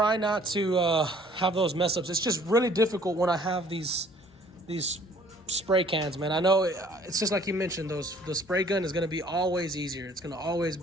not to have those mess ups. It's just really difficult when I have these spray cans, man. I know it's just like you mentioned, the spray gun is going to be always easier. It's going to always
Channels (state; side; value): normal; both; correlation 0.56